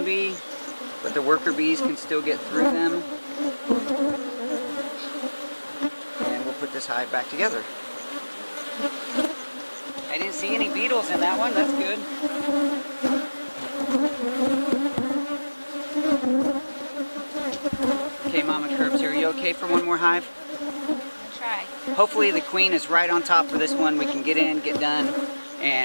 bee, but the worker bees can still get through them. And we'll put this hive back together. I didn't see any beetles in that one, that's good. Okay, Mama Curbs, are you okay for one more hive? Try. try. Hopefully the queen is right on top for this one. We can get in, get done,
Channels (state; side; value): inverted; both; correlation -1.00